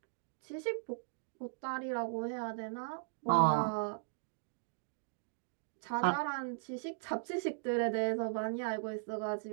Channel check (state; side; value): silent; left; digital silence